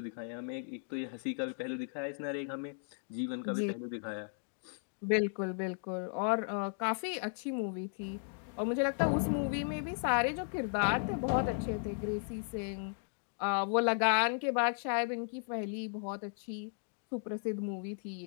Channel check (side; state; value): right; silent; digital silence